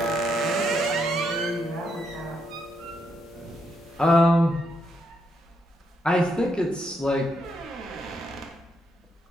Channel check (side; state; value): both; normal; correlation 0.78